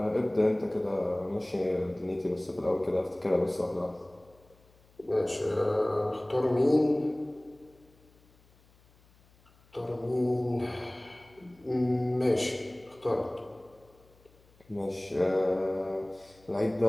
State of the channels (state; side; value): noise; left; hum, 30 dB below the sound